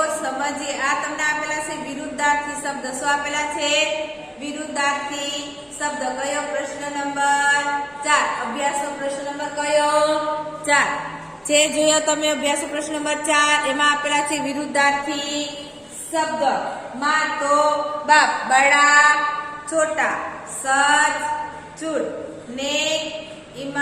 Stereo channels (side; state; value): both; identical; correlation 1.00